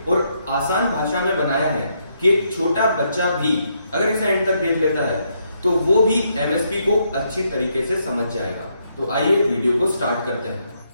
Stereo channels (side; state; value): both; inverted; correlation -0.76